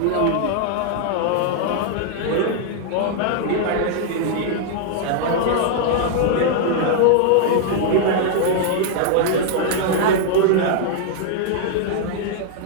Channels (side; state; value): both; different; correlation -0.01